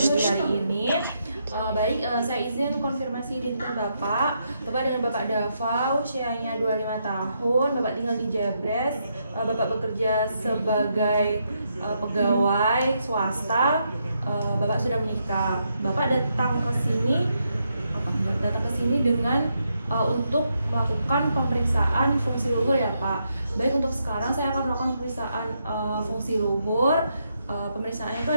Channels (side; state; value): both; inverted; correlation -0.79